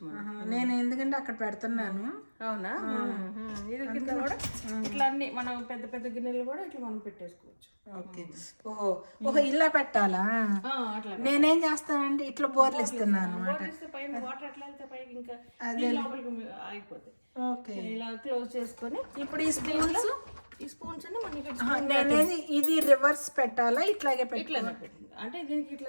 మనం. నేను ఎందుకంటే అక్కడ పెడుతున్నాను. అవునా? ఇది కింద కూడా ఇట్లా అన్ని మనం పెద్ద పెద్ద గిన్నెలు కూడా ఇట్లా మనం పెట్టేసుకోవచ్చు. ఓకే, ఓహో ఇలా పెట్టాలా? నేనేం చేస్తానంటే ఇట్లా బోర్లు ఇస్తున్నాను పైన వాటర్ ఎట్లా వెళ్తే పైకి ఇంకా లోపలికి అయిపోతాయి. ఓకే, ఇలా క్లోజ్ చేసుకొని ఇప్పుడు ఈ స్పూన్స్ నేనేది ఇది రివర్స్ పెట్టాలా? ఇట్లాగే ఇట్లా అంటే దీనికి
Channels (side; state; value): both; inverted; correlation -1.00